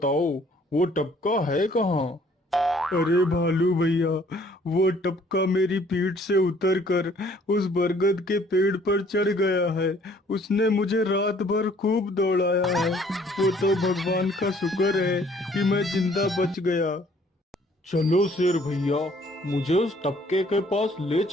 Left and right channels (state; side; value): normal; both; correlation 0.59